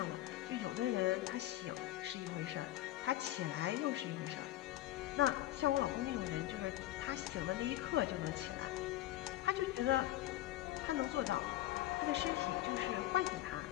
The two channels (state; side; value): quieter; right; 15.3 dB